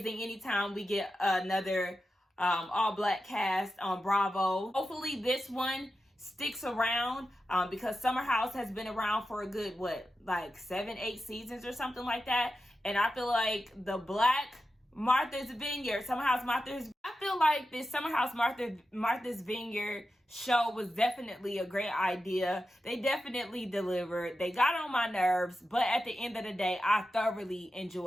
anytime we get another all black cast on Bravo. Hopefully this one sticks around because Summer House has been around for a good, like 7-8 seasons or something like that. And I feel like the Black Martha's Vineyard, Summer House Martha's, I feel like this Summer House Martha's Vineyard show was definitely a great idea. They definitely delivered. They got on my nerves, but at the end of the day, I thoroughly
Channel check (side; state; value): both; normal; correlation 0.91